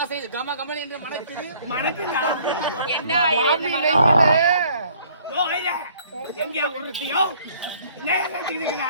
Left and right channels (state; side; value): inverted; both; correlation -0.58